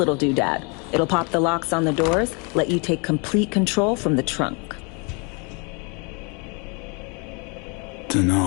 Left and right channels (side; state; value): right; quieter; 32.7 dB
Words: doodad. It'll pop the locks on the doors, let you take complete control from the trunk.